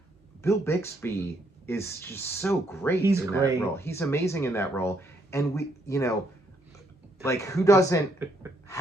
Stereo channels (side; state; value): both; normal; correlation 0.71